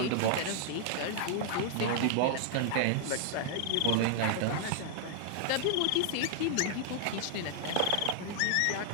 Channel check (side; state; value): both; different; correlation 0.00